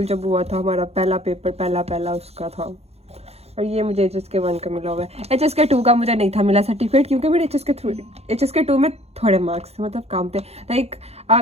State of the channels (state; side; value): late; left; 0.30 ms